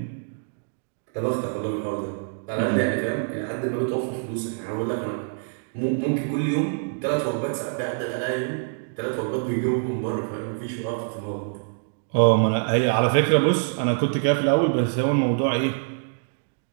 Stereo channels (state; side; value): silent; left; digital silence